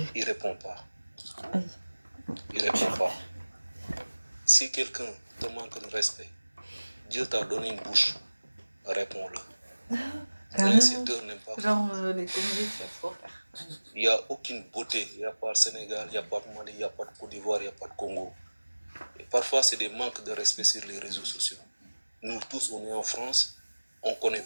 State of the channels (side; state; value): both; inverted; correlation -1.00